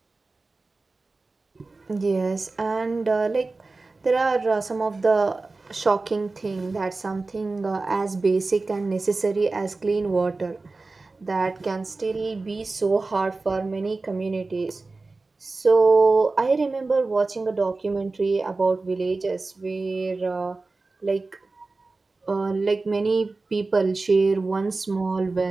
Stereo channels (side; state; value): left; quieter; 3.6 dB